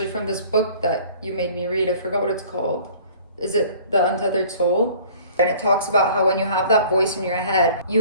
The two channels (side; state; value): both; inverted; correlation -0.50